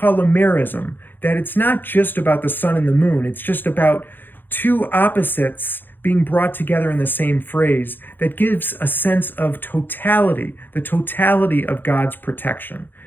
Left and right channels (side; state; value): right; late; 0.093 ms